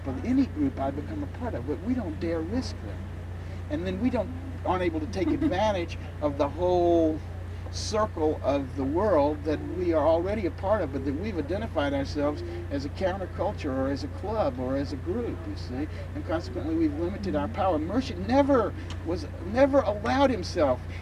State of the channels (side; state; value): both; identical; correlation 1.00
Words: of any group I become a part of, but we don't dare risk that. And then we aren't able to take advantage of the whole circle of the world that we are already a part of, but that we've identified ourselves as a counterculture or as a club or as a group, you see, and consequently we've limited our power. Murshid never allowed himself.